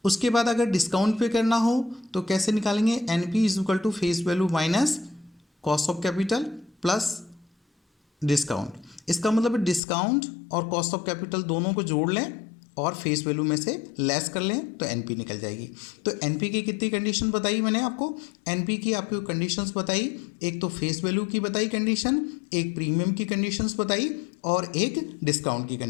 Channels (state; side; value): drops out; right; at 9.8 s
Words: उसके बाद अगर डिस्काउंट पे करना हो तो कैसे निकालेंगे? NP is equal to face value minus cost of capital plus discount. इसका मतलब डिस्काउंट और कॉस्ट ऑफ कैपिटल दोनों को जोड़ लें और फेस वैल्यू में से लेस कर लें तो एनपी निकल जाएगी। तो एनपी की कितनी कंडीशन बताई मैंने आपको? एनपी की आपको कंडीशंस बताई, एक तो फेस वैल्यू की बताई कंडीशन, एक प्रीमियम की कंडीशंस बताई और एक डिस्काउंट की